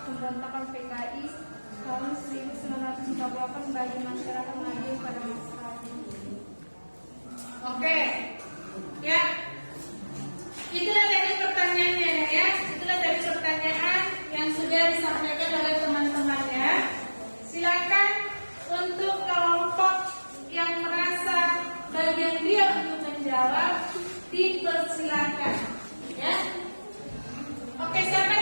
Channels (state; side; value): inverted; both; correlation -1.00